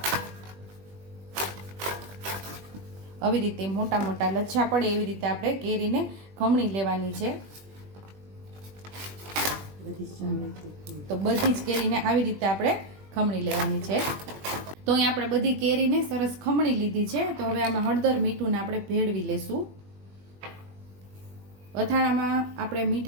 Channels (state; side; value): late; left; 20 ms